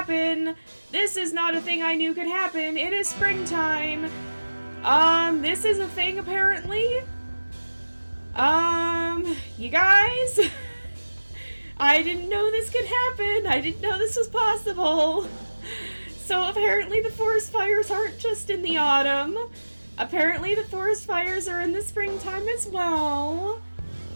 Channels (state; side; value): inverted; both; correlation -1.00